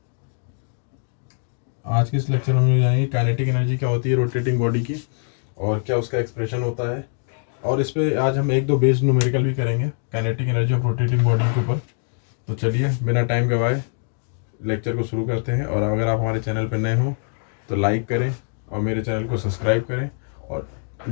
आज के इस लेक्चर में हम जानेंगे काइनेटिक एनर्जी क्या होती है रोटेटिंग बॉडी की, और क्या उसका एक्सप्रेशन होता है, और इस पे आज हम एक दो बेस्ड न्यूमेरिकल भी करेंगे kinetic energy of rotating body के ऊपर। तो चलिए बिना टाइम गवाए लेक्चर को शुरू करते हैं। और अगर आप हमारे चैनल पर नए हो तो लाइक करें और मेरे चैनल को सब्सक्राइब करें और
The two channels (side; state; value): right; silent; digital silence